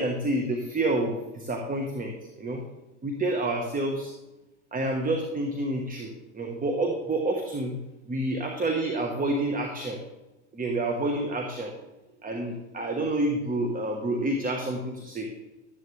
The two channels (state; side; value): normal; both; correlation 0.31